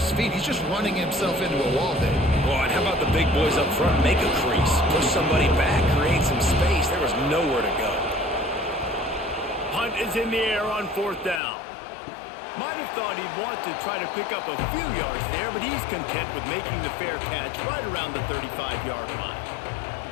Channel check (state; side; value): drops out; right; at 11.4 s